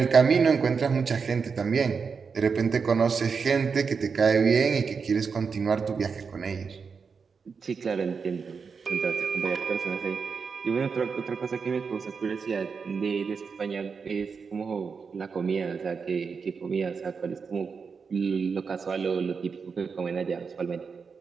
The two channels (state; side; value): quieter; left; 5.5 dB